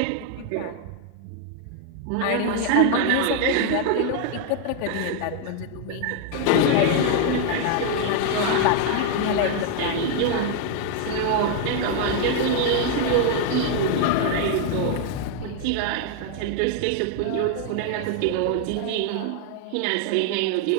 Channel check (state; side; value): different; both; correlation 0.00